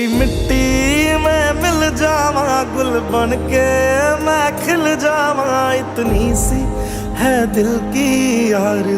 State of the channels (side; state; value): both; identical; correlation 1.00